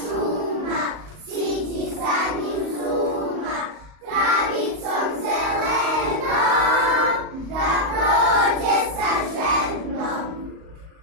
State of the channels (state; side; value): late; left; 38 ms